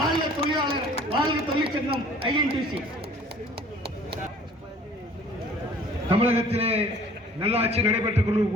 தொழிலாளர், வாழ்க தொழிற்சங்கம் ஐஎன்டிசி. தமிழகத்திலே நல்லாட்சி நடைபெற்றுக்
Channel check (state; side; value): normal; both; correlation 0.51